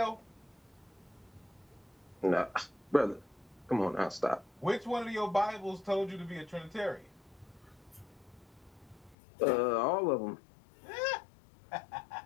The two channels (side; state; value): right; drops out; at 9.2 s